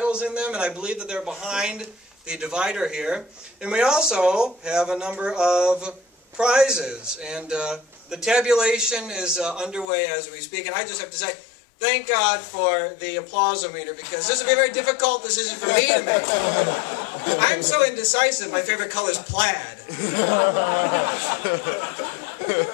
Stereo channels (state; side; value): drops out; right; at 9.9 s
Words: in them, and I believe that they're behind the divider here. And we also have a number of prizes, and the tabulation is underway as we speak, and I just have to say, thank God for the applause-o-meter, because this will be a very difficult decision for me to make. I'm so indecisive, my favorite color is plaid.